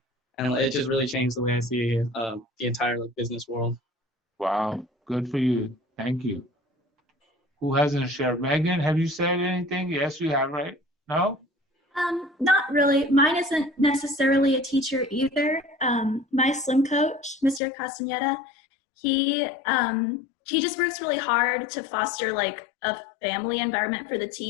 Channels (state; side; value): drops out; right; at 17.6 s